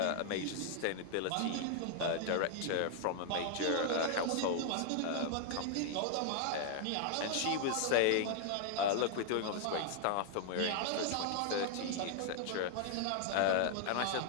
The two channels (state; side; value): different; both; correlation 0.00